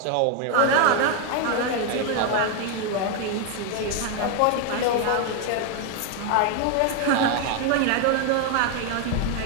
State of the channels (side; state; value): both; different; correlation 0.01